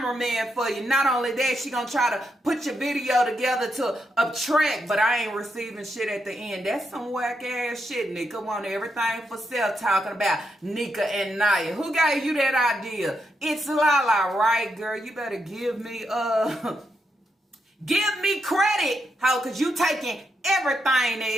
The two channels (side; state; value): both; normal; correlation 0.82